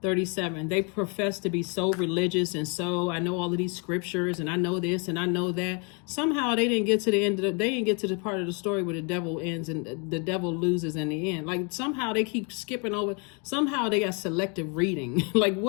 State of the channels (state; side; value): quieter; right; 35.1 dB